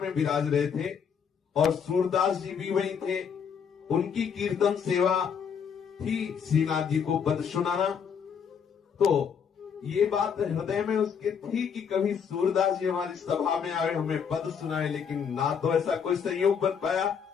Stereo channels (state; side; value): quieter; right; 7.0 dB